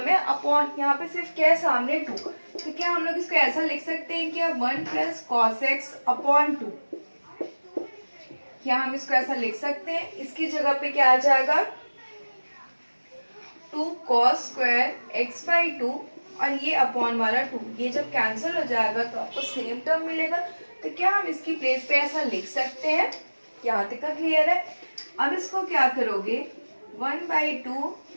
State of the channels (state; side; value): inverted; both; correlation -1.00